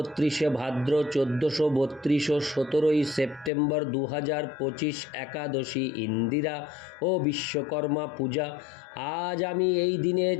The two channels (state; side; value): drops out; right; at 3.5 s